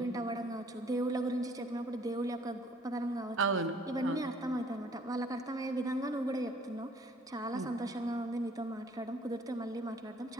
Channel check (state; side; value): normal; both; correlation 0.59